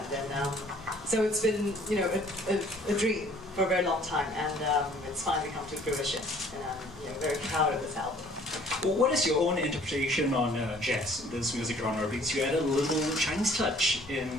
then so it's been a dream for a very long time, and it's finally come to fruition, and I'm very proud of this album. Well, what is your own interpretation on jazz, this music genre? Because you added a little Chinese touch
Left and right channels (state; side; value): noise; left; rumble, 19 dB below the sound